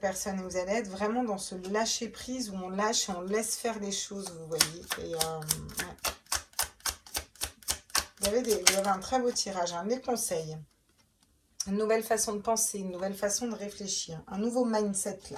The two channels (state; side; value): identical; both; correlation 1.00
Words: et vous allez être vraiment dans ce lâcher prise où on lâche et on laisse faire des choses, vous voyez. Et ouais. Vous avez un très beau tirage, des conseils, une nouvelle façon de penser, une nouvelle façon de réfléchir, un nouveau mindset là.